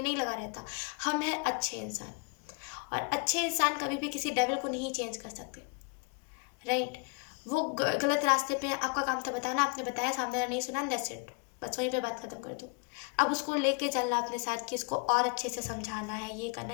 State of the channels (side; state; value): right; quieter; 33.9 dB